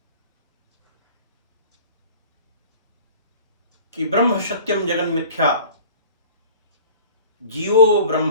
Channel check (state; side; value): inverted; both; correlation -0.43